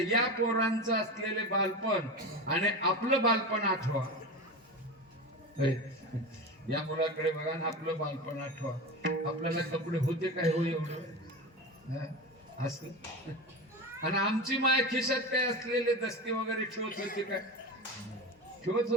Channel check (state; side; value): normal; both; correlation 0.25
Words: पोरांचं असलेले बालपण आणि आपलं बालपण आठवा. या मुलाकडे बघा ना, आपलं बालपण आठवा. आपल्याला कपडे होते काय हो एवढं असं. आणि आमची माय खिशात काय असलेले दस्ती वगैरे ठेवत होते काय? ठेवत